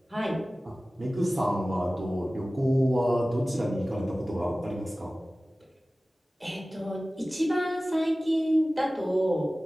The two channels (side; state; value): both; normal; correlation 0.97